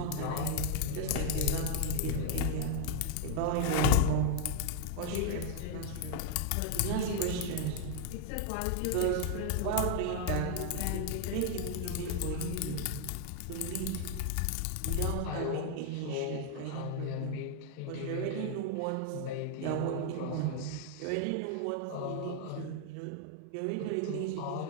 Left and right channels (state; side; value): different; both; correlation 0.00